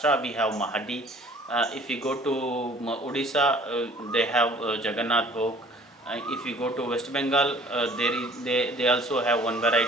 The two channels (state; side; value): normal; both; correlation 0.53